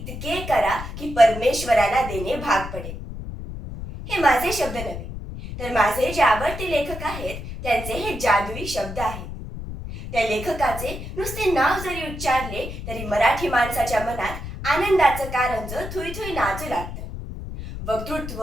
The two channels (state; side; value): noise; left; rumble, 9 dB below the sound